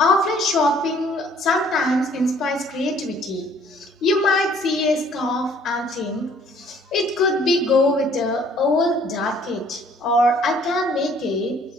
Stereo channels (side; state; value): both; normal; correlation 0.59